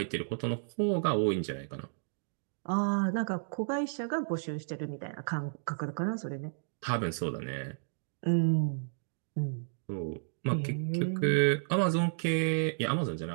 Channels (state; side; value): silent; left; digital silence